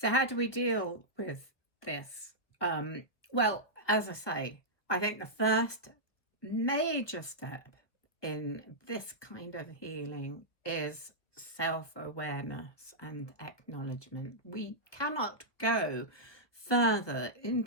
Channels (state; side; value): late; right; 1.4 ms